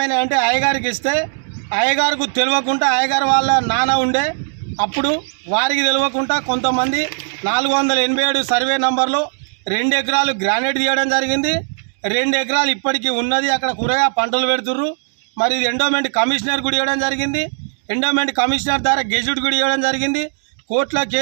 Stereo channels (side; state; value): left; silent; digital silence